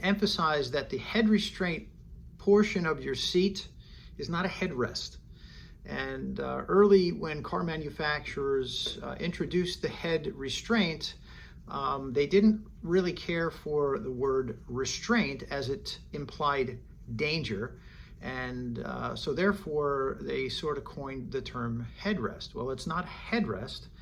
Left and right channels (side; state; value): both; identical; correlation 1.00